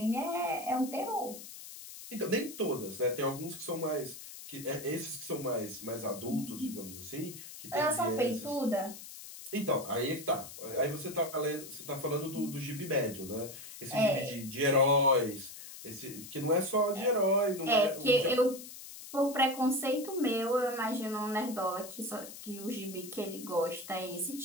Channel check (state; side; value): noise; left; hiss, 13 dB below the sound